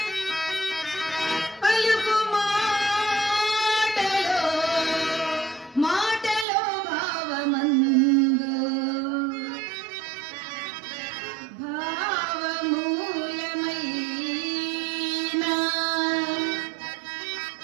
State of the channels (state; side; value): drops out; left; at 6.5 s